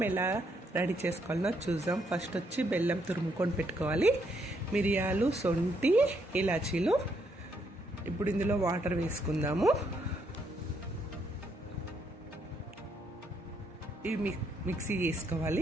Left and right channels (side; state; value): both; normal; correlation 0.74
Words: ఎలా రెడీ చేసుకోవాలో చూద్దాం. ఫస్ట్ వచ్చి బెల్లం తురుముకొని పెట్టుకోవాలి. మిరియాలు, సొంటి, ఇలాచీలు. ఇప్పుడు ఇందులో వాటర్ వేసుకుందాము. ఇవి మిక్సీ